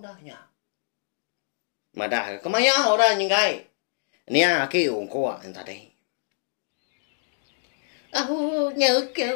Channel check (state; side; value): silent; right; digital silence